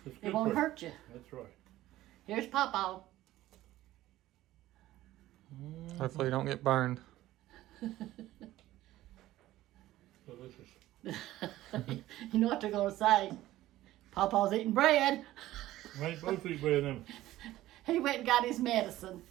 It's it good won't for- hurt you. That's right. Here's Papa. Hopefully you don't get burned. Delicious. You know what they're going to say. Papa's eating bread. I ain't supposed to eat bread now. He went and got his medicine.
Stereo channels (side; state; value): left; quieter; 15.4 dB